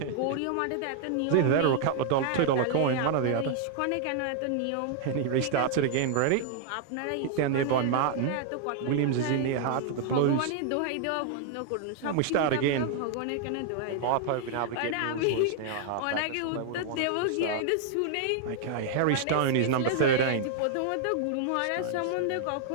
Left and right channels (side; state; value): both; different; correlation 0.00